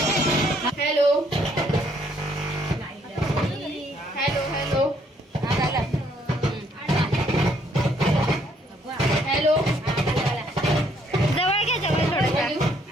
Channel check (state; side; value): normal; both; correlation 0.67